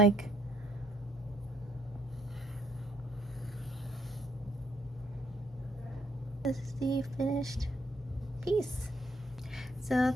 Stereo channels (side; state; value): both; normal; correlation 0.71